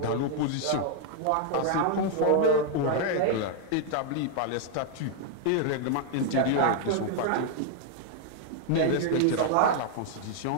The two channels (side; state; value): both; different; correlation 0.00